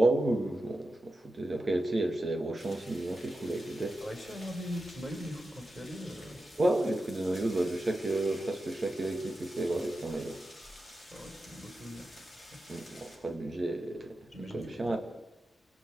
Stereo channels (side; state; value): both; normal; correlation 0.91